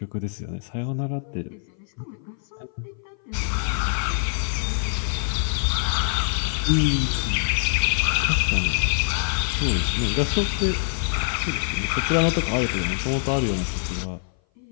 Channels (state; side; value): silent; right; 58 dB below the other